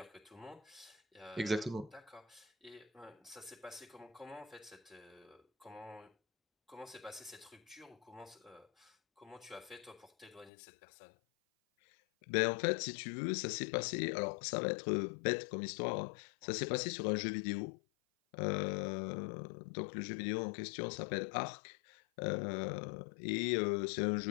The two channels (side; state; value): right; drops out; at 10.5 s